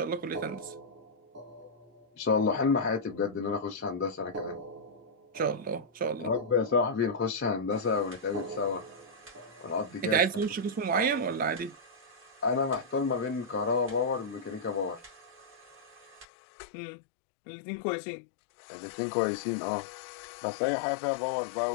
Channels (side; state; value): right; drops out; at 16.2 s